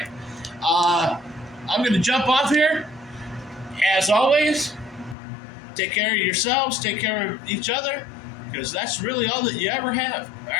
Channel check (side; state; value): right; drops out; at 5.2 s